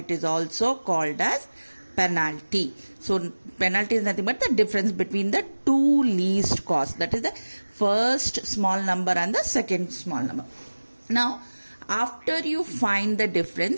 is also called as penalty. So penalty is nothing but the difference between the two least costs, that is the first small number and the second small number. Now after you find the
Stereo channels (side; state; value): both; inverted; correlation -1.00